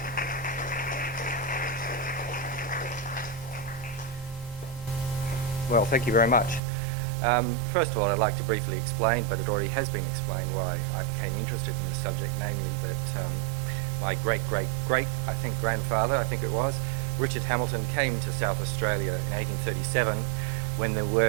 Well, thank you very much. First of all, I'd like to briefly explain, but it already has been explained, why I became interested in this subject, namely that my great-great-great, grandfather, Richard Hamilton, came to South Australia in 1837 when there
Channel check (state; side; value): drops out; left; at 6.6 s